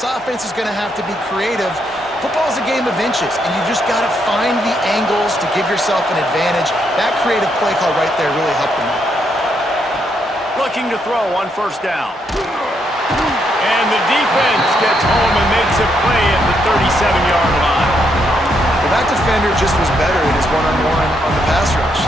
offense is going to have to be creative. Football's a game of inches, and you just got to find the angles to give yourself an advantage. That creative play call right there really helped them out. Looking to throw on 1st down. And the defense gets home and makes a play at the 37-yard line. Well, that defender just was better in his one-on-one on the pass rush.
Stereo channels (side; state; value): both; normal; correlation 0.77